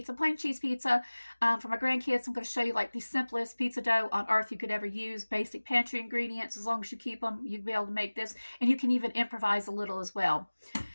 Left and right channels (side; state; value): both; inverted; correlation -1.00